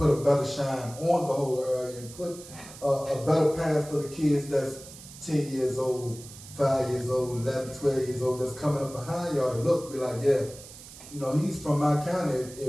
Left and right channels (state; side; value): noise; right; hiss, 17 dB below the sound